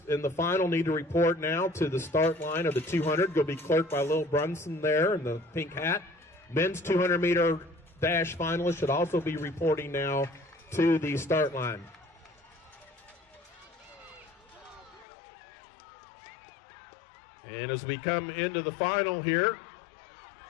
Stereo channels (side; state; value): right; drops out; at 15.1 s